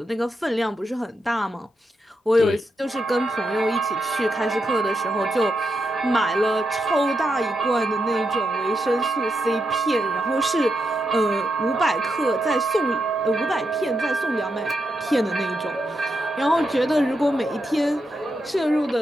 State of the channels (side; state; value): both; normal; correlation 0.84